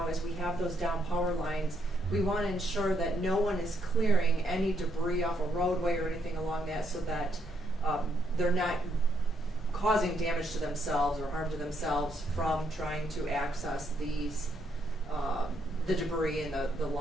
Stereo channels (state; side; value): normal; both; correlation 0.75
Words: as we have those down power lines. We want to ensure that no one is clearing any debris off a roadway or anything along that, so that they're not causing damage to themselves or harm to themselves from trying to access these the debris and the